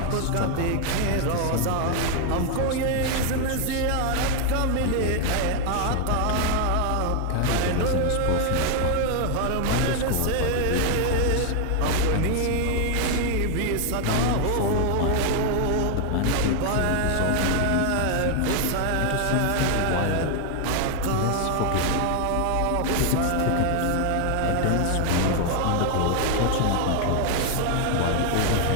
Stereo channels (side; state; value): both; different; correlation 0.00